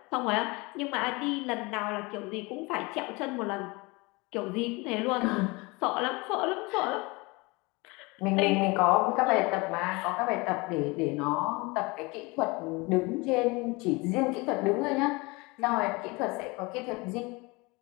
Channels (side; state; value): right; quieter; 25.6 dB